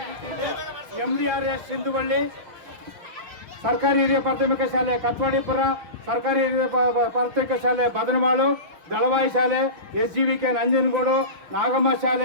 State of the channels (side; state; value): left; late; 6.1 ms